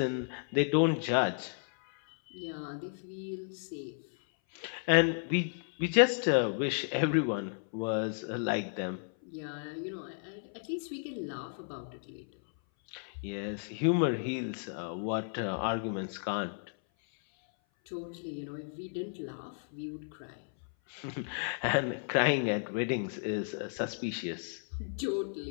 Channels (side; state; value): right; silent; 55 dB below the other